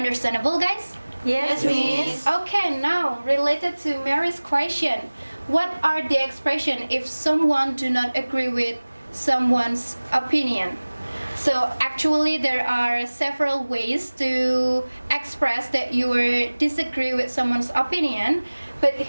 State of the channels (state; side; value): inverted; both; correlation -1.00